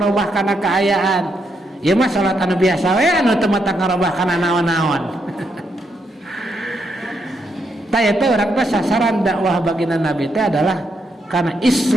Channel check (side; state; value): both; normal; correlation 0.79